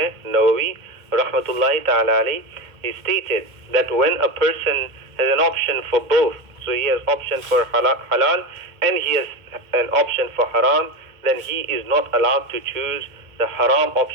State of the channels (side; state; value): left; late; 2.1 ms